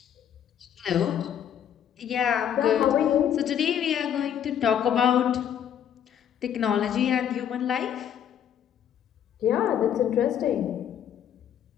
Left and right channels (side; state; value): right; quieter; 9.4 dB